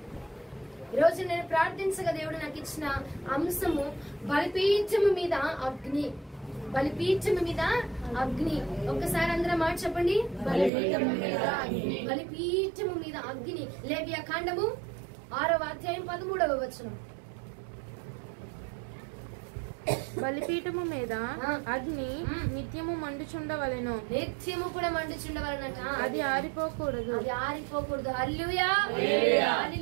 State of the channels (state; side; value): drops out; left; at 10.7 s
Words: ఈరోజు నేను ప్రార్థించగా దేవుడు నాకు ఇచ్చిన అంశము బలిపీఠము మీద అగ్ని. బలిపీఠము మీద అగ్ని. ఒక్కసారి అందరం మాట చెప్పండి, బలిపీఠము మీద అగ్ని. బలిపీఠము మీద అగ్ని. లేవియా కాండము 6వ అధ్యాయం 13వ వచనం. బలిపీఠము మీద అగ్ని నిత్యము మండుచుండవలెను. నిత్యము కూడా మండుచుండవలనట. అది ఆరిపోకూడదు. అది ఆరిపోకూడదు. హల్లెలూయా,